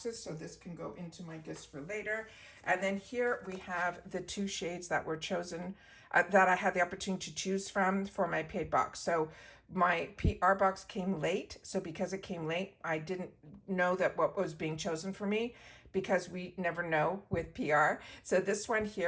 so this can go into my gifts for later. And then here we have the 2 shades that were chosen, that I had the opportunity to choose from for my paid box. So my PR box came late, so because it came late, I didn't know that what was being chosen for me, because we never know with PR. So this one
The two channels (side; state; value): both; identical; correlation 1.00